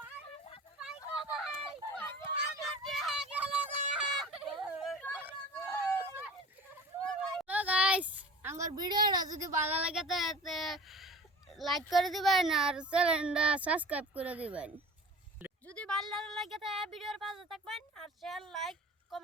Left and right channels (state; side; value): normal; both; correlation 0.40